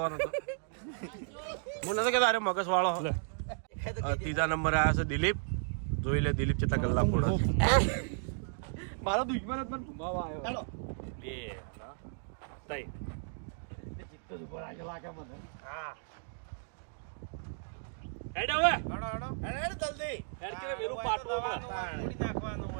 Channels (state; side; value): silent; left; digital silence